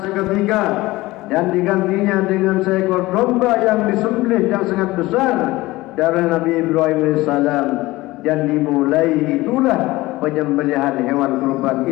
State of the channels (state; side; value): quieter; right; 19.3 dB